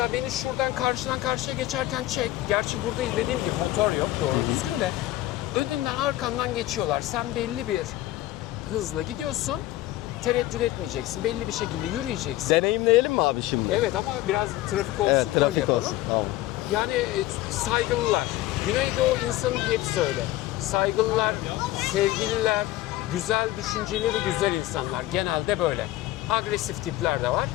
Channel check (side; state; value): right; quieter; 15.9 dB